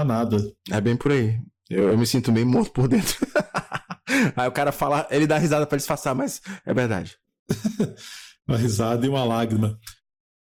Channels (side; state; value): both; identical; correlation 1.00